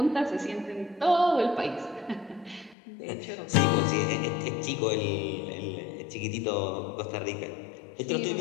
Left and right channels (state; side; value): drops out; right; at 2.8 s